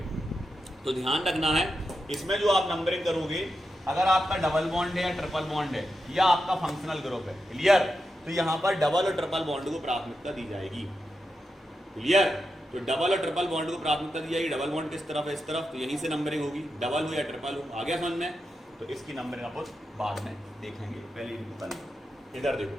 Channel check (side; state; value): both; normal; correlation 0.88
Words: तो ध्यान रखना है, इसमें जो आप नंबरिंग करोगे, अगर आपका डबल बॉन्ड है या ट्रिपल बॉन्ड है या आपका फंक्शनल ग्रुप है, क्लियर, तो यहाँ पर डबल और ट्रिपल बॉन्ड को प्राथमिकता दी जाएगी। क्लियर? तो डबल और ट्रिपल बॉन्ड को प्राथमिकता दी जाएगी। डबल बॉन्ड किस तरफ है? इस तरफ, तो यहीं से नंबरिंग होगी, डबल हो या ट्रिपल हो। आ गया समझ में? तो इसकी नंबरिंग आप बाद में देखेंगे, पहले इनको कर लो। इधर देखो,